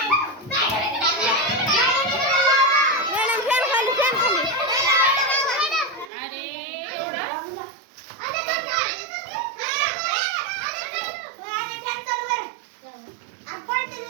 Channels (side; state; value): left; drops out; at 6.1 s